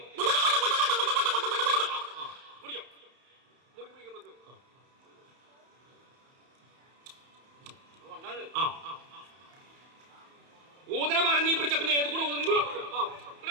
ഊതന പറഞ്ഞ് നീ പിടിച്ച പിന്നെ ഏത് കൂടെ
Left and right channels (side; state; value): left; late; 31 ms